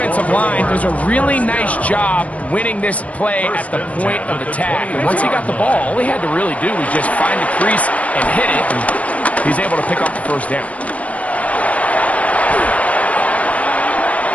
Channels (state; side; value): late; right; 0.067 ms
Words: line does a really nice job winning this play at the point of attack. And once he got the ball, all he had to really do was just find the crease and hit it. And he's able to pick up the 1st down.